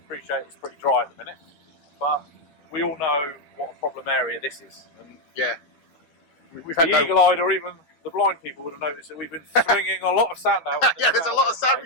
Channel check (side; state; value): right; late; 12 ms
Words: appreciate it's pretty dry at the minute, but we all know what a problem area this is. And we've had the eagle-eyed or even the blind people would have noticed that we've been swinging a lot of sand out. There's a lot of sand